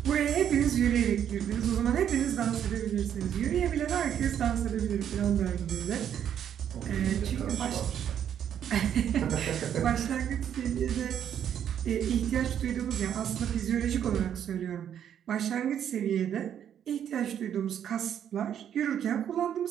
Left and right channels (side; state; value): left; quieter; 9.4 dB